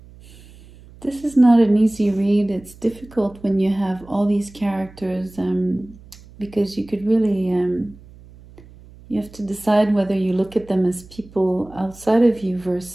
This is not an easy read. It's difficult when you have all these characters, because you could really, you have to decide whether you look at them as people outside of you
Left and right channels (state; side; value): noise; right; hum, 22 dB below the sound